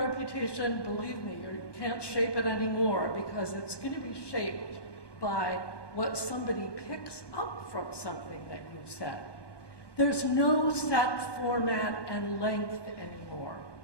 believe me, you can't shape it anymore because it's going to be shaped by what somebody picks up from something that you said. There's no set format and length anymore.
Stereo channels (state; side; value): late; right; 1.2 ms